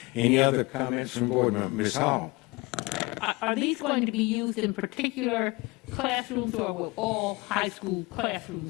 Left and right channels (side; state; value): right; quieter; 24.3 dB